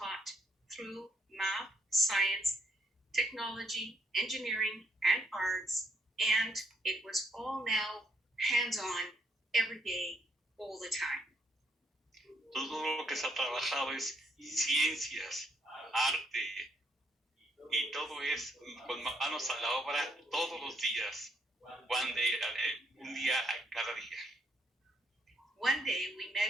through math, science, technology, engineering, and arts, and it was all now hands-on, every day, all the time. Todo lo que se ha trabajado es ciencias, arte, y todo es con manos a la obra todos los días, un día a cada día. One day we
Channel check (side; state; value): both; normal; correlation 0.73